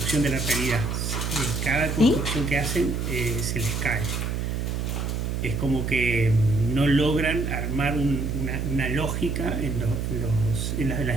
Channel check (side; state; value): right; noise; hum, 1 dB below the sound